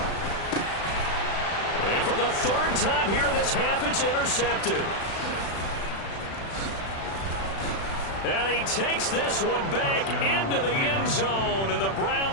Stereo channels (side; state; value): right; late; 36 ms